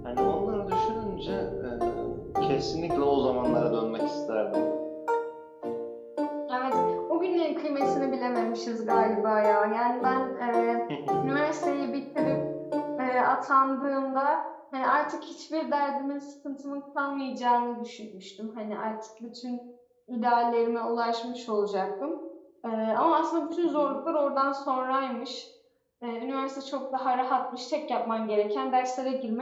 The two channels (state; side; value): identical; both; correlation 1.00